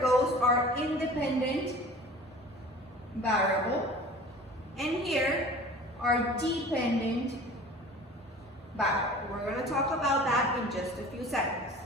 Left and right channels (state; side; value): normal; both; correlation 0.42